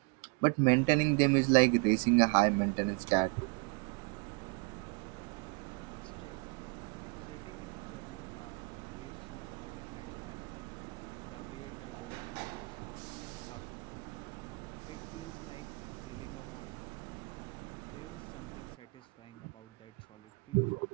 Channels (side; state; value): left; quieter; 32.6 dB